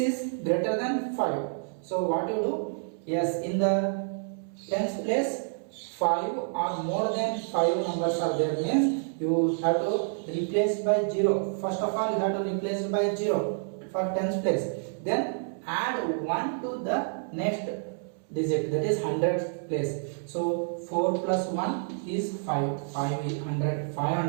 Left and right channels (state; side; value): silent; left; 59 dB below the other